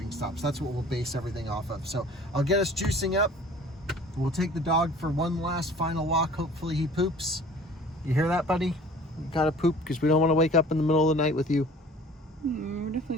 stops. That's what we'll base everything off of. So I'll get us juicing up. We'll take the dog for one last final walk. Hopefully he poops. You hear that, buddy? You gotta poop, because we don't want to wake up in the middle of the night with you. We're definitely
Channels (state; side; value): normal; both; correlation 0.48